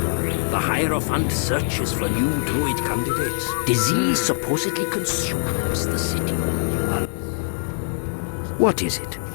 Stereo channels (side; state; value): right; silent; 61 dB below the other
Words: The Hierophant searches for new druid candidates. Disease supposedly consumes the city. What is it?